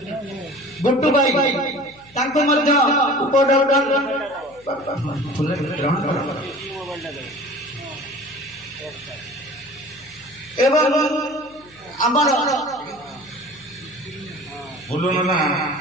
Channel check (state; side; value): noise; left; hum, 28 dB below the sound